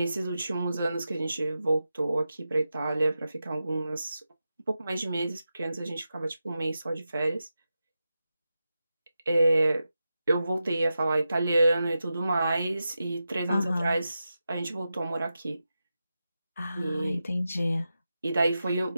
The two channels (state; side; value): inverted; both; correlation -0.90